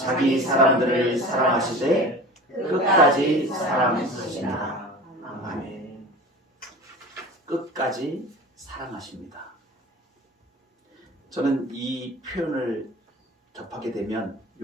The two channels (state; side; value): normal; both; correlation 0.37